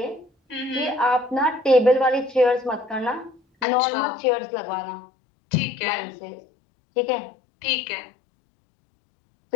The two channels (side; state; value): right; drops out; at 3.7 s